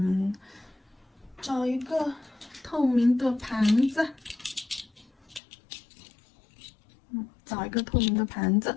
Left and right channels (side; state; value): right; drops out; at 5.4 s